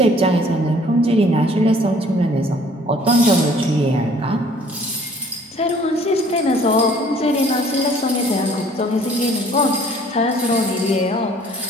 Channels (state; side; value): normal; both; correlation 0.56